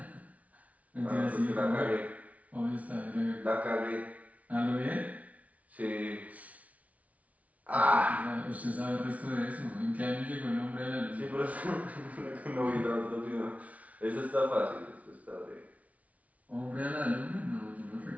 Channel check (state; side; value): late; left; 0.068 ms